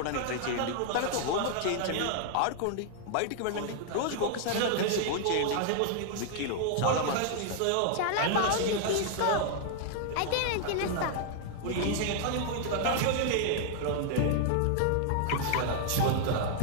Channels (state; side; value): different; both; correlation 0.00